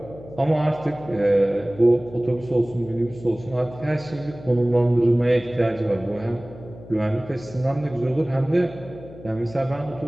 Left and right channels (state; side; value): noise; left; hum, 17 dB below the sound